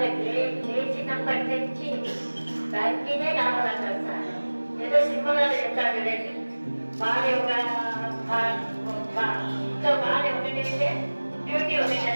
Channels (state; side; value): inverted; both; correlation -1.00